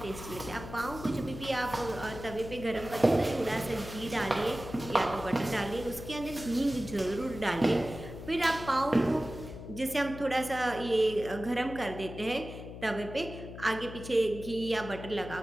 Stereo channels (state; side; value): noise; left; hum, 11 dB below the sound